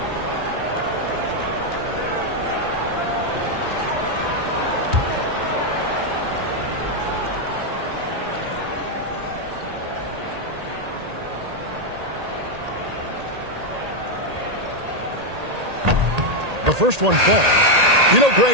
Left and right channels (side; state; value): left; late; 1.8 ms